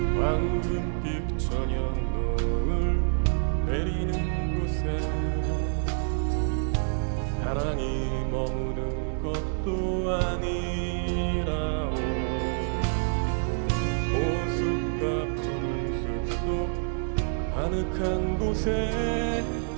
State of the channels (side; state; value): left; silent; digital silence